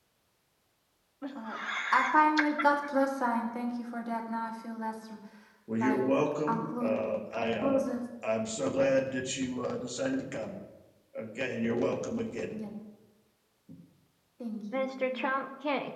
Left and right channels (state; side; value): identical; both; correlation 1.00